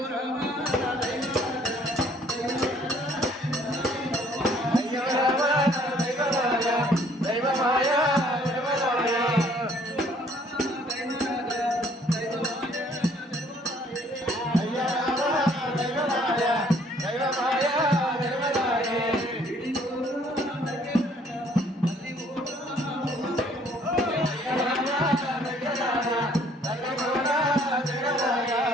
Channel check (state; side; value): normal; both; correlation 0.60